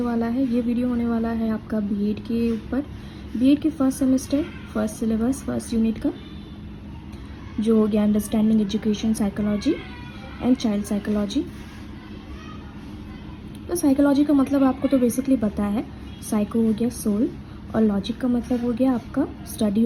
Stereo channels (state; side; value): identical; both; correlation 1.00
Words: वाला है ये वीडियो होने वाला है आपका बीएड के ऊपर। बीएड के first semester first syllabus first unit का जो हो गया understanding education psychology and child psychology. तो साइकोलॉजी का मतलब आपको तो बेसिकली पता है। साइको हो गया सोल और लॉजिक का मतलब हो गया आपका स्टडी